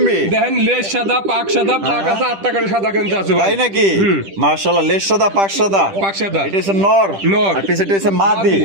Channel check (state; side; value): late; left; 10 ms